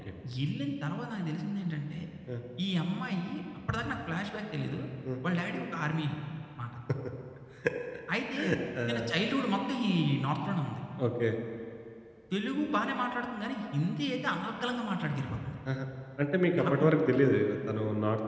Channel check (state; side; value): identical; both; correlation 1.00